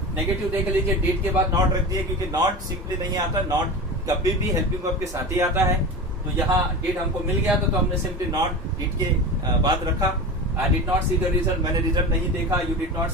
नेगेटिव देख लीजिए, डिड के बाद नॉट रख दिए, क्योंकि नॉट सिंपली नहीं आता. नॉट कभी भी हेल्पिंग वर्ब के साथ ही आता है. तो यहाँ डिड हमको मिल गया तो हमने सिंपली नॉट डिड के बाद रखा. I did not C the result, मैंने रिजल्ट नहीं देखा. यू डिड नॉट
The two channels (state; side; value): normal; both; correlation 0.29